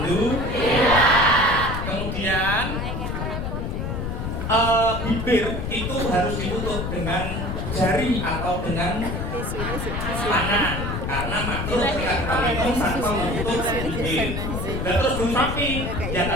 Kemudian bibir itu harus ditutup dengan jari atau dengan tangan. Karena makhluk ketika kita minum tanpa menutup bibir. Dan terus belum rapi, ya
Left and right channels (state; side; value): noise; left; rumble, 3 dB below the sound